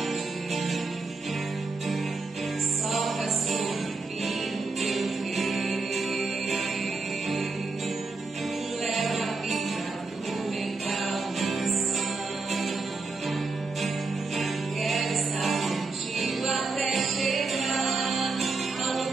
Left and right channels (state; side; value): quieter; left; 3.8 dB